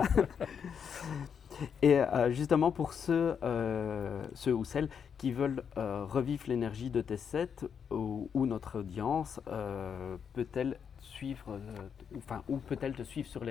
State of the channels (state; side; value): quieter; right; 7.2 dB